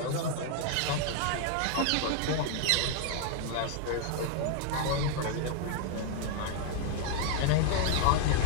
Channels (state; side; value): different; both; correlation 0.00